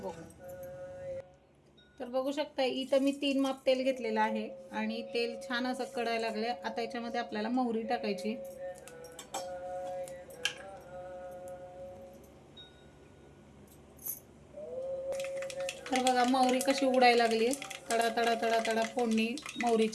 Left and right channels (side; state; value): both; identical; correlation 1.00